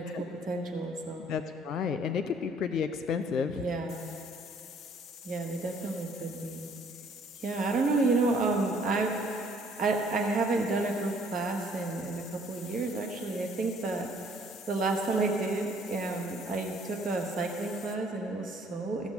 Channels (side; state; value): both; normal; correlation 0.60